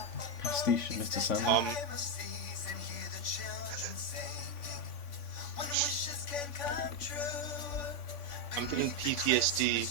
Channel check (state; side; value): late; right; 3.5 ms